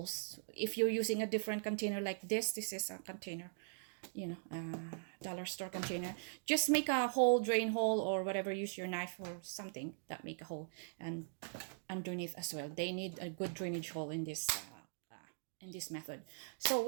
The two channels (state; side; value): silent; left; digital silence